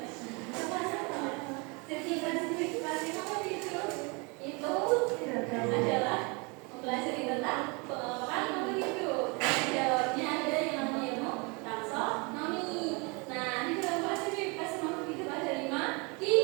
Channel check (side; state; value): left; quieter; 30.1 dB